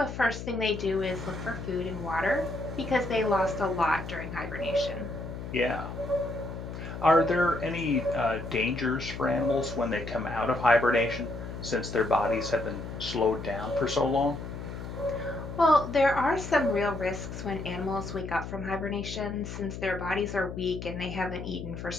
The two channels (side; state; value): left; noise; hum, 8 dB below the sound